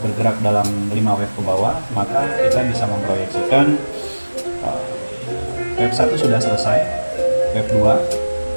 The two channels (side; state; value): both; inverted; correlation -1.00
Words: dalam 5 wave ke bawah, maka kita bisa memproyeksikan wave 1 sudah selesai, wave 2